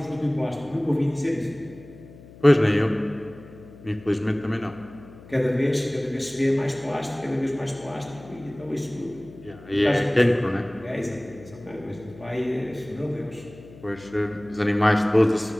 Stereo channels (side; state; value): left; noise; hum, 20 dB below the sound